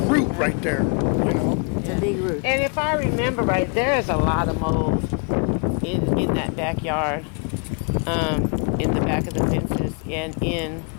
root right there. You know, It's a big root. And if I remember right, there is a lot of mold in that backyard, in the back of the fences and in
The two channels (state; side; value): quieter; right; 35.3 dB